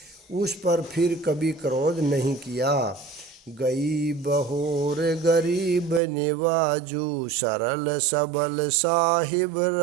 उस पर फिर कभी क्रोध नहीं किया। गई बहोर गरीब निवाजू, सरल सबल साहिब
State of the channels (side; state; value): left; drops out; at 6.0 s